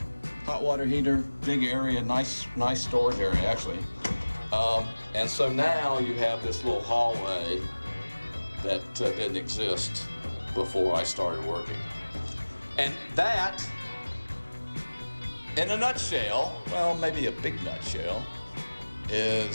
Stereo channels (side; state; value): both; inverted; correlation -1.00